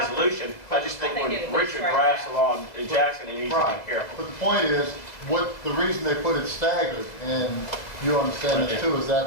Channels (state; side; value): late; right; 2.0 ms